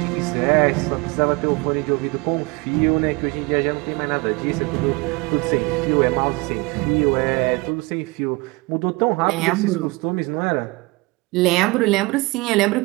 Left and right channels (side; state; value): left; quieter; 25.4 dB